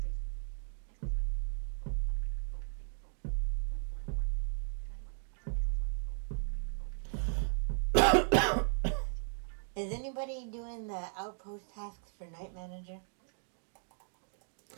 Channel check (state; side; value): silent; left; 54 dB below the other